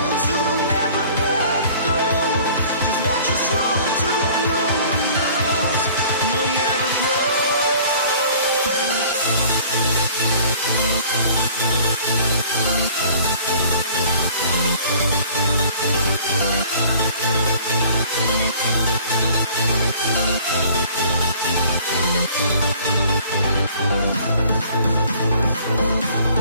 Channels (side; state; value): both; inverted; correlation -0.51